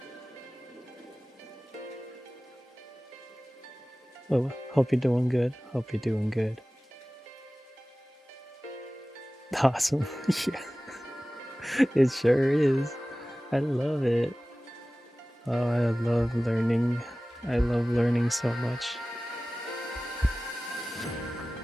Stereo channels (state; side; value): normal; both; correlation 0.97